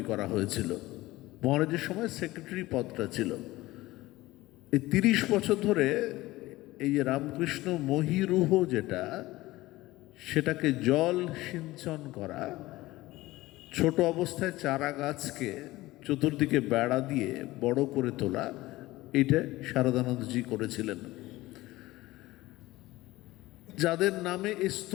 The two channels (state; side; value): quieter; right; 18.4 dB